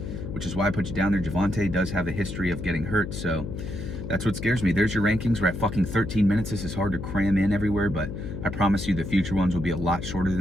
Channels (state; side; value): noise; left; hum, 7 dB below the sound